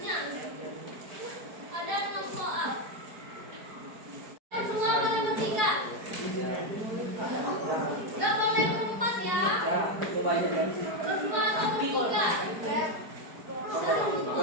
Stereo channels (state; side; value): late; left; 4.7 ms